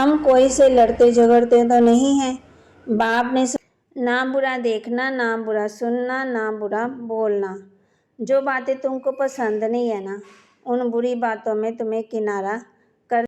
कोई से लड़ते झगड़ते तो नहीं हैं। बाप ने ना बुरा देखना, ना बुरा सुनना, ना बुरा बोलना। जो बातें तुमको पसंद नहीं है ना उन बुरी बातों में तुम्हें किनारा कर।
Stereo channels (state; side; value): identical; both; correlation 1.00